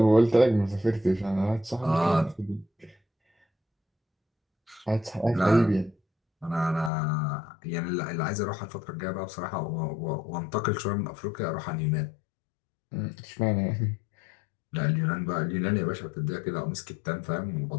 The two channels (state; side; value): drops out; right; at 6.9 s